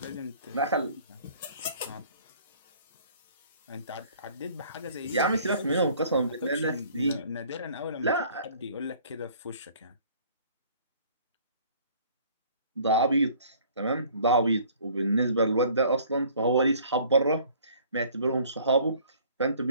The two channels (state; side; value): inverted; both; correlation -0.55